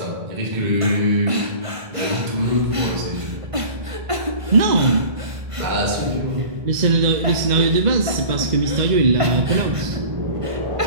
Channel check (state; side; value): late; left; 1.5 ms